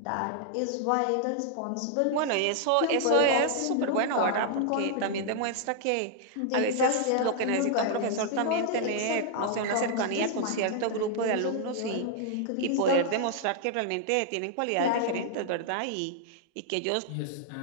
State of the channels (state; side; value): different; both; correlation -0.01